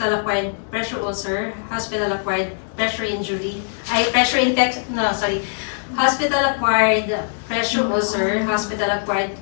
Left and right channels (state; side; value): silent; right; 65 dB below the other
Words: pressure ulcer, hospital-acquired pressure injury, hospital-acquired pressure ulcer, hospital-acquired